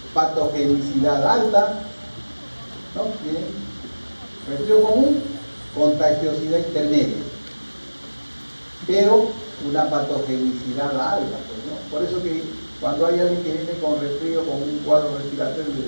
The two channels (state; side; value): inverted; both; correlation -1.00